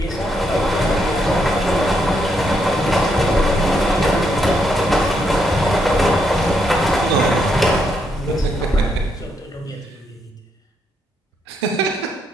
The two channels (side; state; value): both; normal; correlation 0.77